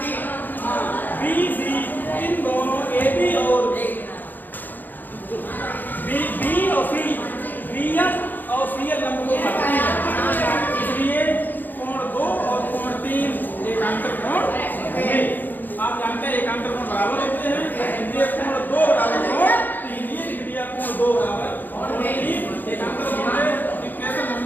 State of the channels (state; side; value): late; right; 0.087 ms